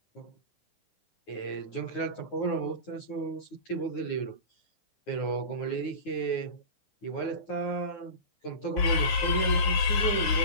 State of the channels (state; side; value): late; right; 9.7 ms